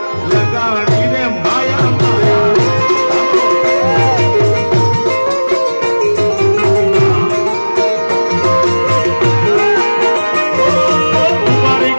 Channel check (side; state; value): both; inverted; correlation -1.00